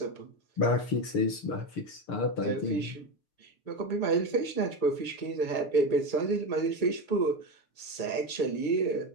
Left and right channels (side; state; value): right; late; 6.6 ms